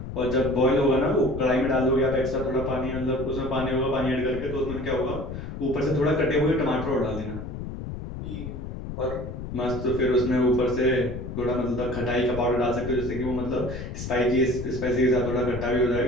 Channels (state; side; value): noise; left; rumble, 8 dB below the sound